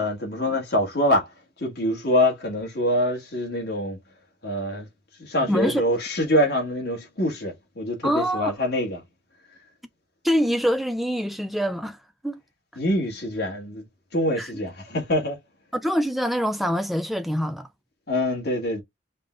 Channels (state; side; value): normal; both; correlation 0.33